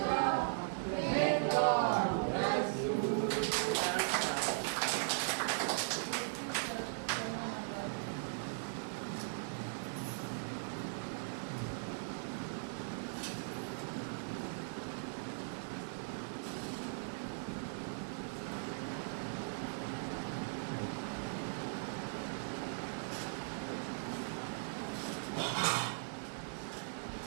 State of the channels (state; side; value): silent; left; digital silence